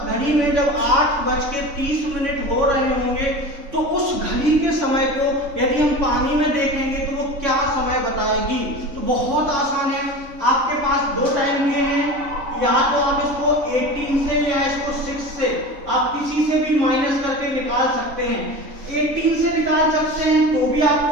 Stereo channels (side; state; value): left; late; 3.5 ms